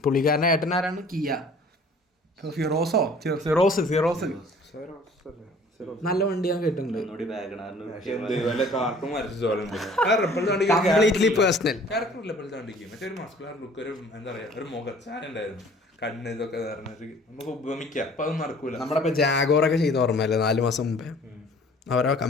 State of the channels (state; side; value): normal; both; correlation 0.52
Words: പുള്ളിക്കാരൻ്റെ ഏട്ടനാരാണ്? കിയ സിറോസ് നല്ല വണ്ടി ഞാൻ കേട്ടിട്ടുണ്ട്. Completely personal. കണ്ണ് ഇതൊക്കെ നമുക്ക് ഉപമിക്കാം. അപ്പൊ അതൊന്നും നടക്കൂല. നമ്മുടെ ഇപ്പൊ ജാഗോറൊക്കെ ചെയ്ത ഓർമ്മയല്ലേ 4 മാസം മുമ്പേ? അവരോ